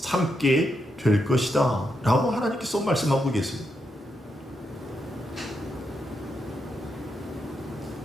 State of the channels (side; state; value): both; normal; correlation 0.82